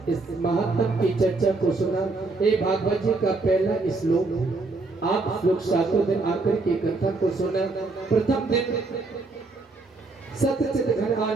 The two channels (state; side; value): quieter; left; 3.5 dB